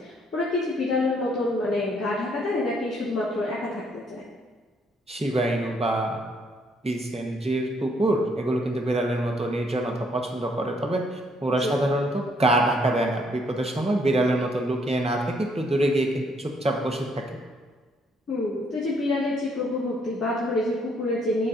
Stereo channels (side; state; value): both; normal; correlation 0.69